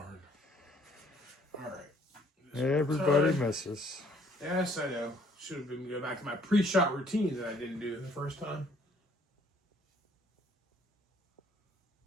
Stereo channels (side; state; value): both; normal; correlation 0.62